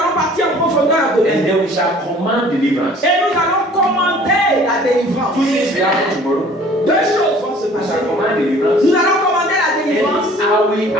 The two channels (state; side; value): normal; both; correlation 0.51